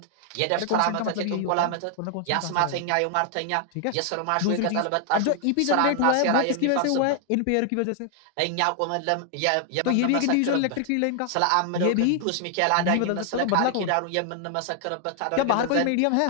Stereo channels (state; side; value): different; both; correlation 0.00